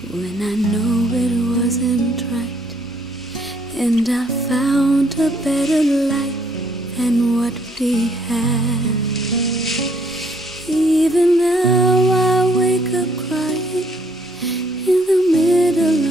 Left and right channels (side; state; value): both; normal; correlation 0.66